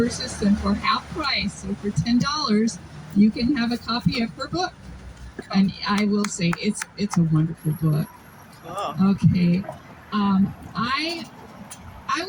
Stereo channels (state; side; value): identical; both; correlation 1.00